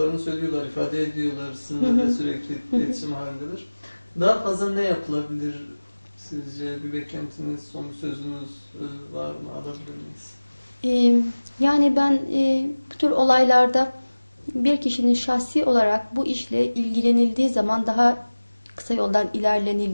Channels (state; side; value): inverted; both; correlation -1.00